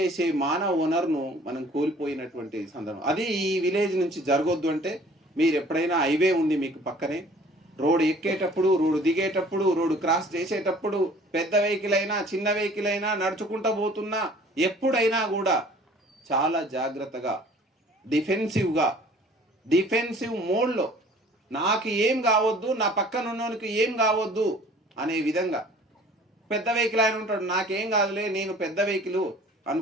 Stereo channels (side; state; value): both; normal; correlation 0.51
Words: మానవ వనరును మనం కోల్పోయినటువంటి సందర్భం అది ఈ విలేజ్ నుంచి జరగొద్దు. అంటే మీరు ఎప్పుడైనా హైవే ఉంది మీకు పక్కనే, రోడ్డు ఎక్కేటప్పుడు, రోడ్డు దిగేటప్పుడు, రోడ్డు క్రాస్ చేసేటప్పుడు, పెద్ద వెహికల్ అయినా చిన్న వెహికల్ అయినా నడుచుకుంటూ పోతున్నా ఎప్పుడైనా కూడా చాలా జాగ్రత్తగా డిఫెన్సివ్ మోడ్లో నాకు ఏం కావద్దు, నా పక్కన ఉన్నోనికి ఏం కావద్దు అనే విధంగా. పెద్ద వెహికల్ ఆయన ఉంటాడు, నాకేం కాదులే, నేను పెద్ద వెహికల్